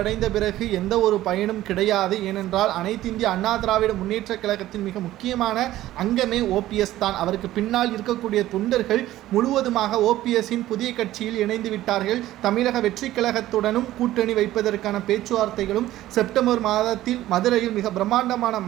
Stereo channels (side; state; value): left; quieter; 14.7 dB